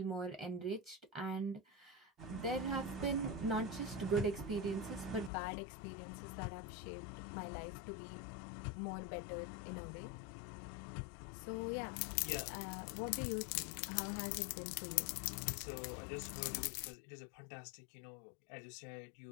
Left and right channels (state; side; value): drops out; right; at 5.3 s